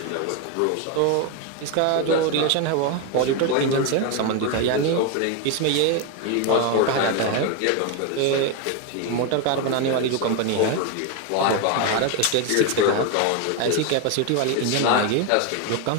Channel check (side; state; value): both; different; correlation 0.02